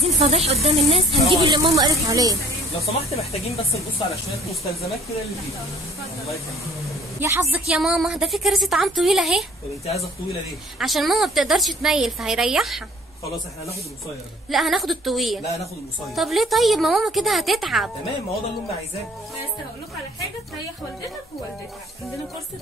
فضيح قدام الناس، هنجيب اللي ماما قالت عليه. لو سمحت محتاجين بس نبص على شويه مستلزمات كده اللي فيها. الله يخليك. يا حظك يا ماما، ده في كراسي طعام طويله اهي. طب انت عايزه الطويله ليه؟ عشان ماما بتقدرش تميل فهيريحها. خلاص احنا هناخد القصير ده. لا هناخد الطويل. لا هناخد القصير. طب ليه طيب؟ ما ماما كده هتتعب. تمام، ما هو ده اللي امي عايزاه. بس هقول لكم على حاجه تريح والدتك ووالدتك. عندنا كرسي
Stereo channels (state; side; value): normal; both; correlation 0.54